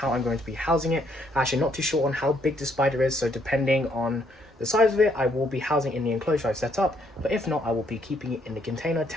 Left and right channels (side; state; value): both; normal; correlation 0.70